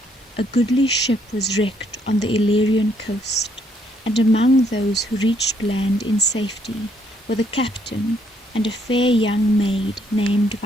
a goodly ship was wrecked on the Illyrian coast, and among those who reached land in safety were the captain and a fair young maid named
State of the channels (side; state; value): both; normal; correlation 0.70